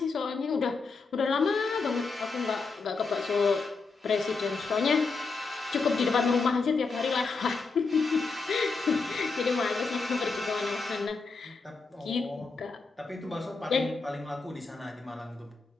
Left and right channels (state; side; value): quieter; right; 4.3 dB